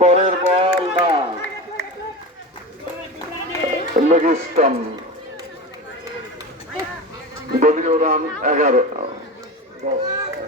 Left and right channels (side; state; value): both; normal; correlation 0.27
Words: পরের বল না, লেগ স্টাম্প। দলীয় রান 11,